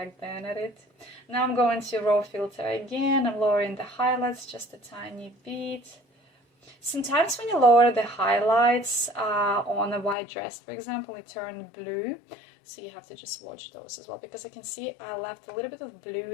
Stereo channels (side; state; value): right; drops out; at 10.2 s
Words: then at it. Now I'm going to raw filter again. I'm lowering the highlights just a tiny bit. Sometimes when you lower the highlights on a white dress, for example, it turned blue. So you have to just watch those as well, because I can see I left a little bit of